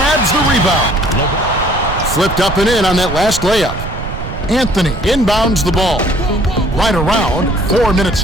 the rebound. Flipped up and in on that last layup. Anthony inbounds the ball. Right around, 4 minutes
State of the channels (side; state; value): right; noise; rumble, 9 dB below the sound